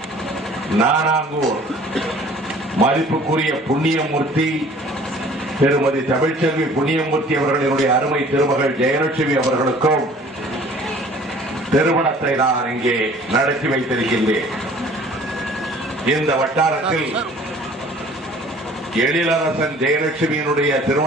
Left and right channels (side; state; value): both; normal; correlation 0.51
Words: நானாங்கூர் மதிப்புக்குரிய புண்ணியமூர்த்தி திருமதி தமிழ்ச்செல்வி புண்ணியமூர்த்தி அவர்களினுடைய அருமை திருமகள் ஜெயலட்சுமி அவர்களுக்கும் திருமணத்தை நான் இங்கே நடத்தி வைத்திருக்கின்றேன். இந்த வட்டாரத்தில் எழிலரசன் ஜெயலட்சுமியினுடைய